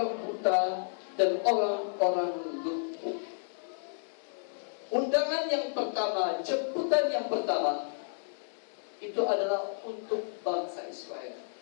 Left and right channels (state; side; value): silent; right; digital silence